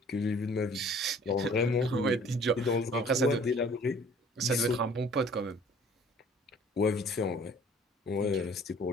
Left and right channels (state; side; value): normal; both; correlation 0.53